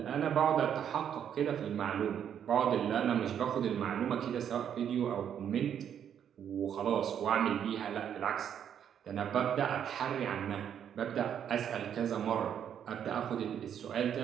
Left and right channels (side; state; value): left; quieter; 8.9 dB